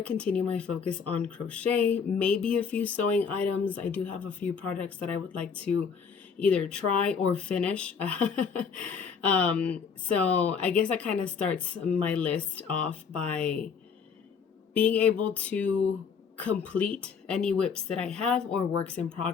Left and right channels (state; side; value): quieter; right; 6.2 dB